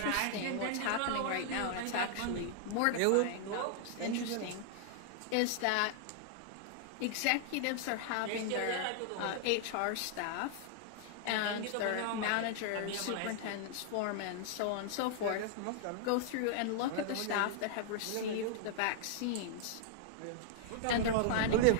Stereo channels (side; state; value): both; different; correlation -0.01